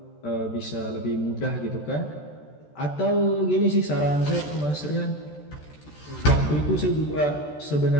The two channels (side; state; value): right; late; 14 ms